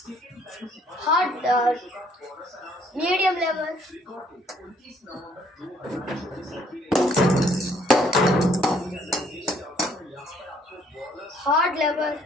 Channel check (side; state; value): both; normal; correlation 0.63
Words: Hard medium level. Hard level.